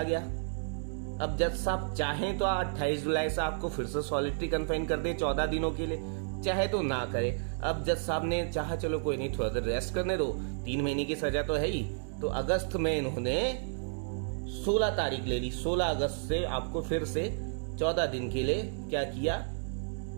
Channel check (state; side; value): silent; left; digital silence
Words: गया। अब जज साहब चाहें तो 28 जुलाई से आपको फिर से सॉलिटरी कन्फाइन कर दे 14 दिनों के लिए, चाहे तो ना करे। अब जज साहब ने चाहा चलो कोई नहीं, थोड़ा देर रेस्ट करने दो, 3 महीने की सजा तो है ही, तो अगस्त में इन्होंने 16 तारीख ले ली, 16 अगस्त से आपको फिर से 14 दिन के लिए क्या किया,